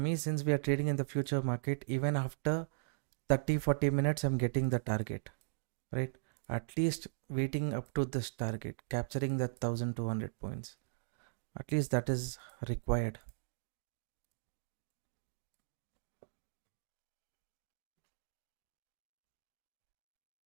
since we are trading in the future market, even after 30-40 minutes, I'm getting the target, right? At least waiting up to this target, capturing that 1200 points. At least that is required.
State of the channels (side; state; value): left; silent; digital silence